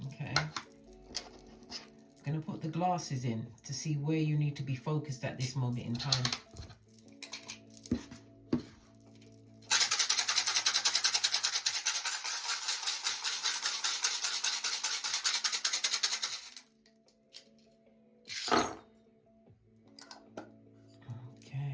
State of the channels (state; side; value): identical; both; correlation 1.00